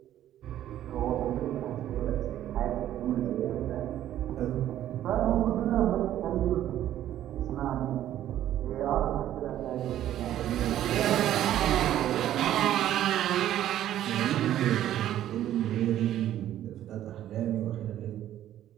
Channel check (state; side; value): quieter; left; 12.1 dB